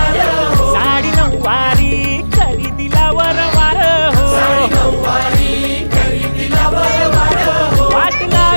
साडी नऊवारी करी दिला वरवार हो वाट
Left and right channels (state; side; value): inverted; both; correlation -1.00